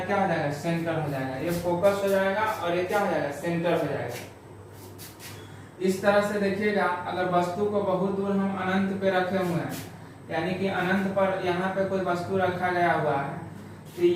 क्या हो जाएगा, सेंटर हो जाएगा। ये फोकस हो जाएगा और ये क्या हो जाएगा, सेंटर हो जाएगा। इस तरह से देखिएगा, अगर वस्तु को बहुत दूर हम अनंत पे रखे हुए हैं, यानी कि अनंत पर यहाँ पे कोई वस्तु रखा गया हुआ है, तो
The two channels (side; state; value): both; identical; correlation 1.00